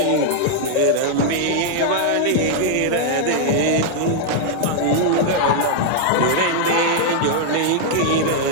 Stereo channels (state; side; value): different; both; correlation 0.00